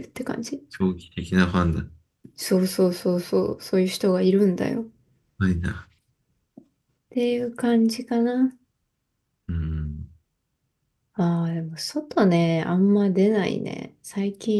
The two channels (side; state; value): both; identical; correlation 1.00